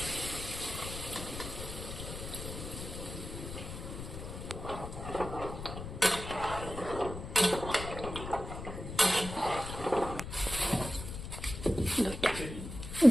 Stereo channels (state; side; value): noise; left; rumble, 8 dB below the sound